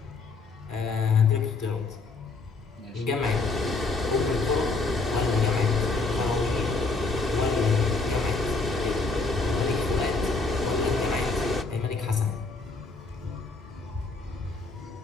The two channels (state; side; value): quieter; right; 3.8 dB